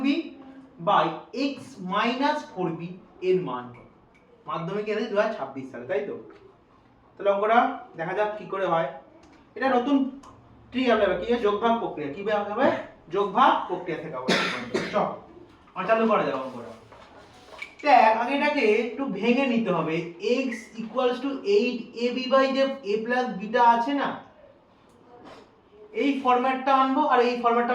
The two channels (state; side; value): identical; both; correlation 1.00